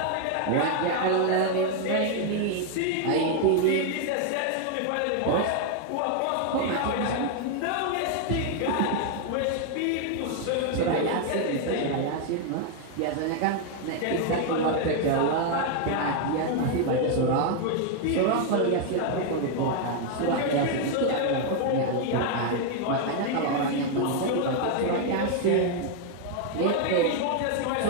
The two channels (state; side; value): different; both; correlation 0.00